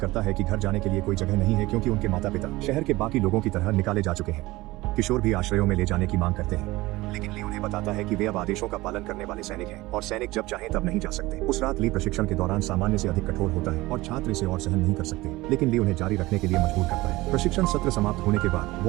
है कि घर जाने के लिए कोई जगह नहीं है क्योंकि उनके माता पिता शहर के बाकी लोगों की तरह निकाले जा चुके हैं। किशोर भी आश्रयों में ले जाने की मांग करते हैं, लेकिन ली उन्हें बताता है कि वे अब आदेशों का पालन करने वाले सैनिक हैं और सैनिक जब चाहें तब नहीं जा सकते। उस रात ली प्रशिक्षण के दौरान सामान्य से अधिक कठोर होता है और छात्र इसे और सहन नहीं कर सकते, लेकिन ली उन्हें जारी रखने के लिए मजबूर करता है। प्रशिक्षण सत्र समाप्त होने के बाद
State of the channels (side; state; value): left; quieter; 19.7 dB